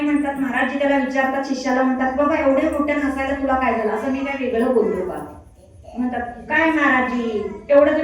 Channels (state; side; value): identical; both; correlation 1.00